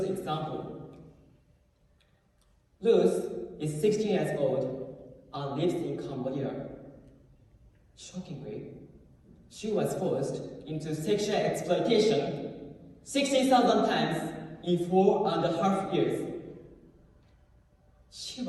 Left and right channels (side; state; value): both; identical; correlation 1.00